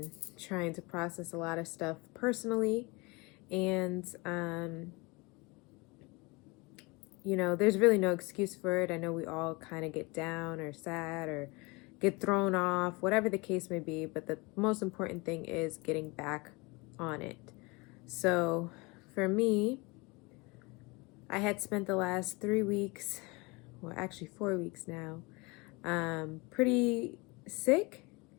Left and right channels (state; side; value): quieter; right; 26.3 dB